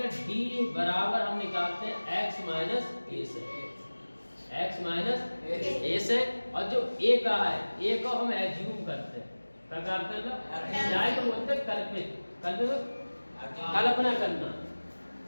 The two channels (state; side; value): inverted; both; correlation -1.00